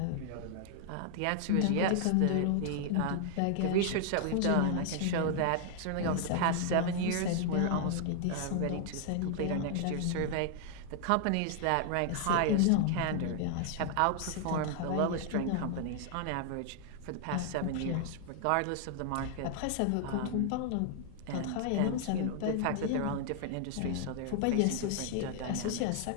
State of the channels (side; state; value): both; different; correlation 0.00